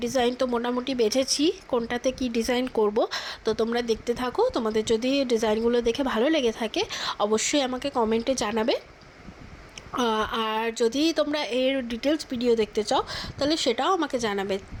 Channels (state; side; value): identical; both; correlation 1.00